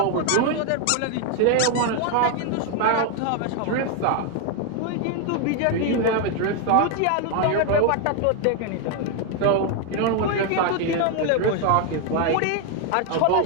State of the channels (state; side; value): different; both; correlation 0.01